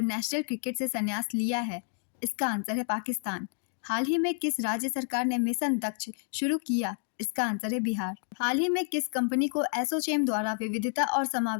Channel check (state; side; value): silent; right; 58 dB below the other